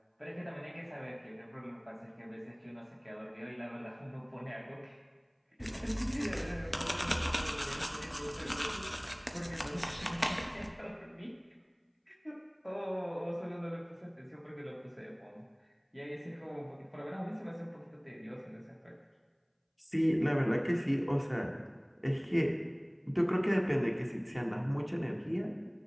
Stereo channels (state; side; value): identical; both; correlation 1.00